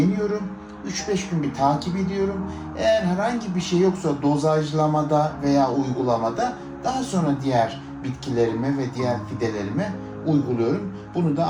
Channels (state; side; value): identical; both; correlation 1.00